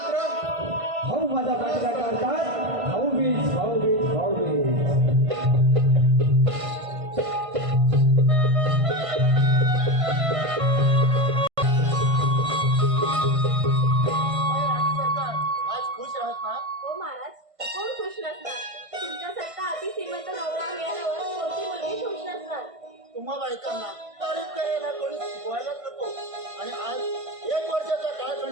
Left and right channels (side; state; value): left; late; 1.5 ms